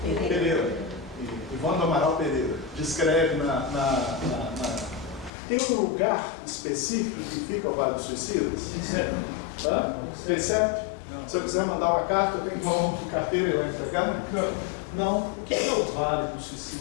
Pereira, Ivone do Amaral Pereira, descreve Tem um lugar específico que fica o Vale dos Suicidas? Tem certo? Se eu quiser mandar uma carta, eu tenho que ir para o carteiro e lá entregar? Não. O que é o Vale dos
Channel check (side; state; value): right; drops out; at 5.3 s